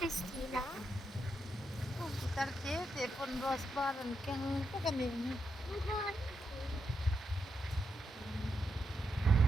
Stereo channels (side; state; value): both; normal; correlation 0.83